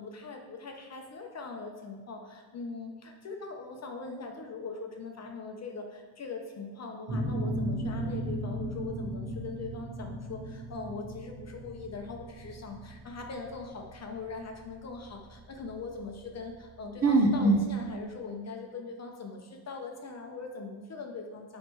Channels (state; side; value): normal; both; correlation 0.33